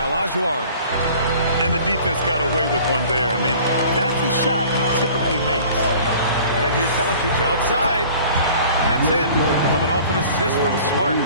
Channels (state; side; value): inverted; both; correlation -0.48